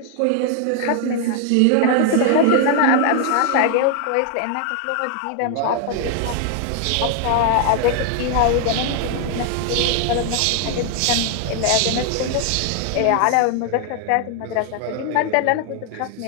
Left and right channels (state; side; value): different; both; correlation 0.00